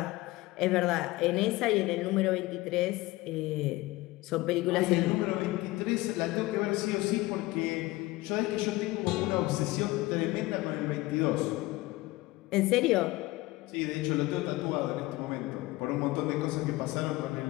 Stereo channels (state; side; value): quieter; right; 19.8 dB